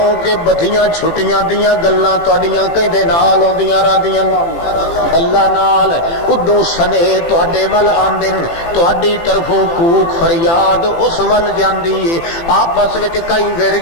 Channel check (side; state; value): right; late; 18 ms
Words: بدھیاں چھٹیاں دیاں گلاں تہاڈیاں کہندے نال ہوندیاں راندیاں اللہ نال ادوں سنے تہاڈے ول آندن تہاڈی طرفوں کوک فریاد اس ول جاندی ہے آپس وچ کئی وڑ